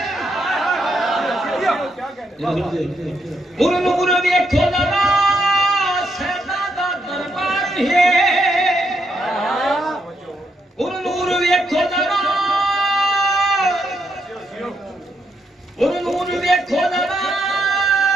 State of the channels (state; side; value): normal; both; correlation 0.78